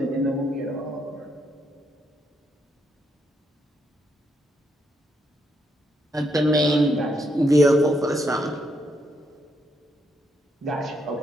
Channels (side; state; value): both; normal; correlation 0.77